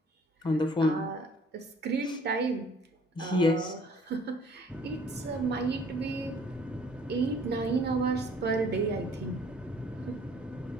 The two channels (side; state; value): both; normal; correlation 0.56